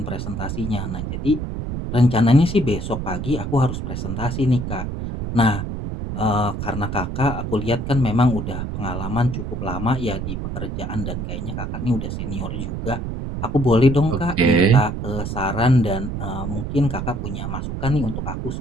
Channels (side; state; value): right; noise; rumble, 4 dB below the sound